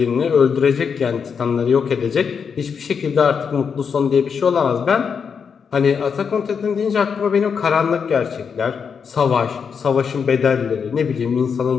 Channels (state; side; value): quieter; right; 6.4 dB